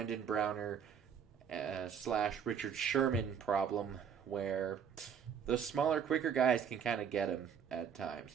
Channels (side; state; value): left; quieter; 7.7 dB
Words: Browner / Richard Sherman problem where the smaller, quicker guys can kind of get him at